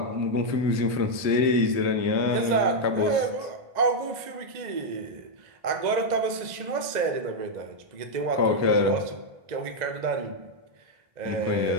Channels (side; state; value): left; late; 1.9 ms